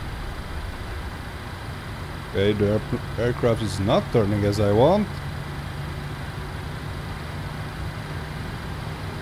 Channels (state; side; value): identical; both; correlation 1.00